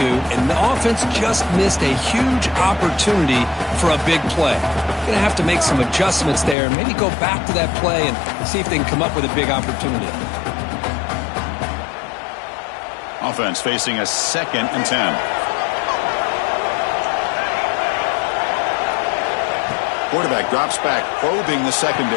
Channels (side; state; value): right; drops out; at 6.6 s